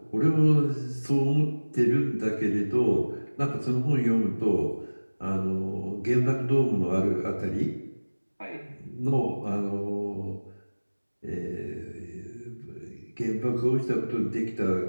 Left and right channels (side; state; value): both; inverted; correlation -1.00